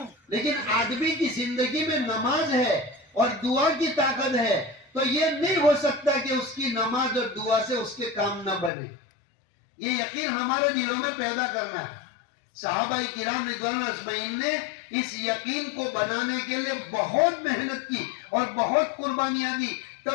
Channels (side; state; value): right; drops out; at 8.7 s